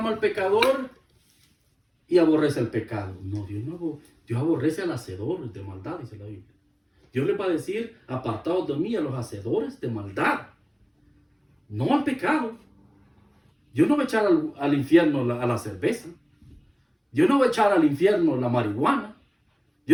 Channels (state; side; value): identical; both; correlation 1.00